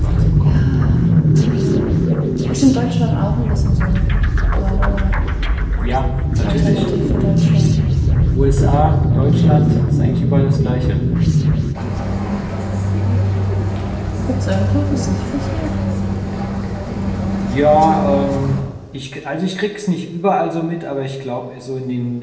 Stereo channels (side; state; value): both; identical; correlation 1.00